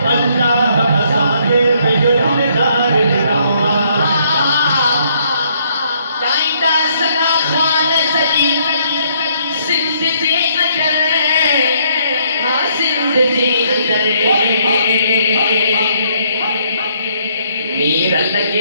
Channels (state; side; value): inverted; both; correlation -0.69